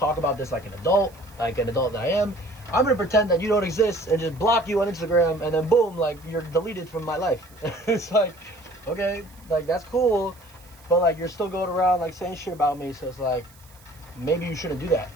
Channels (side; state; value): right; noise; hiss, 26 dB below the sound